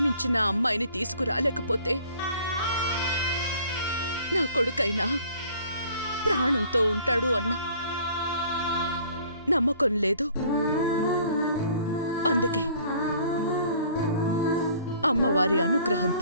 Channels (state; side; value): inverted; both; correlation -0.54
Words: అమ్మాయిని తీసుకురాలేకపోతే నా కొడుకైనా ప్రాణంతో ఉంటాడు అన్న నమ్మకం లేదు. అందుకే అమ్మవారి